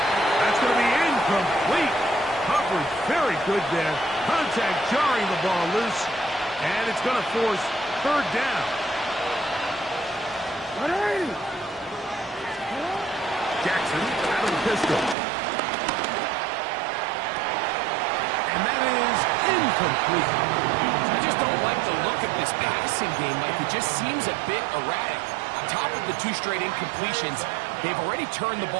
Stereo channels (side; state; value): left; drops out; at 15.2 s